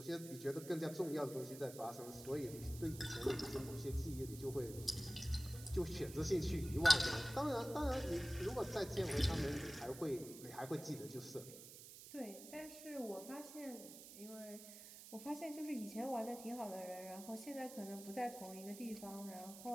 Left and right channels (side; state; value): right; noise; hiss, 14 dB below the sound